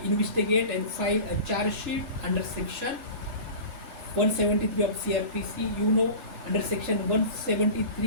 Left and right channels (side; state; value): left; late; 2.5 ms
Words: investigate and file a charge sheet under section 173 of CRPC. You know, under section